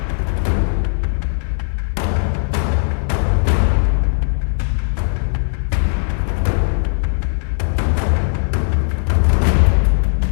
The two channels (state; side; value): silent; right; digital silence